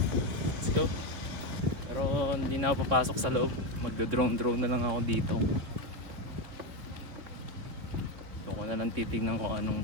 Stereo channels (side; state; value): left; late; 3.7 ms